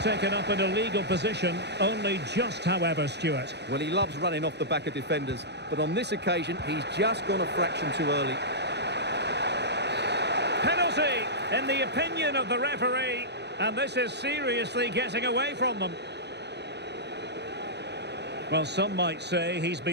taken up an illegal position, only just, however, Stuart. Well, he loves running off the back of defenders, but on this occasion, he's just gone a fraction too early. Penalty, in the opinion of the referee, and this is seriously getting away from them. Well, some might say he's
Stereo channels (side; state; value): left; late; 0.50 ms